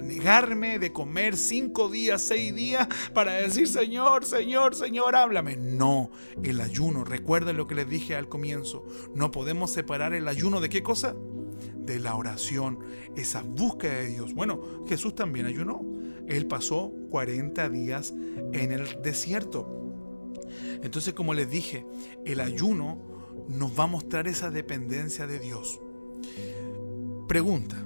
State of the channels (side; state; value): both; inverted; correlation -1.00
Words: negarme de comer 5 días, 6 días para decir Señor, háblame. No, el ayuno, recuerden lo que les dije al comienzo, no podemos separar el ayuno ¿de qué cosa? De la oración, esa búsqueda de Dios. Bueno, Jesús también ayunó. Él pasó 40 días en el desierto. Entonces, como les dije, el ayuno nos va a mostrar esa dependencia de Dios. Pregunta,